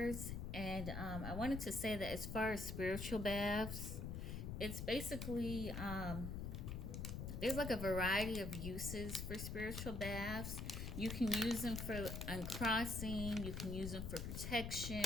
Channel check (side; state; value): left; noise; rumble, 4 dB below the sound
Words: And I wanted to say that as far as spiritual baths, it's basically there's like a variety of uses for spiritual baths. You can use them for uncrossing, you can use them for